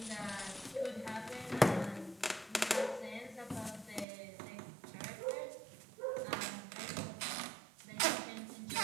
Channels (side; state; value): left; drops out; at 4.0 s